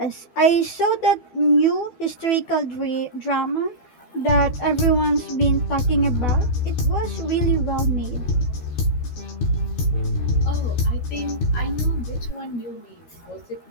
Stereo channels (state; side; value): late; right; 12 ms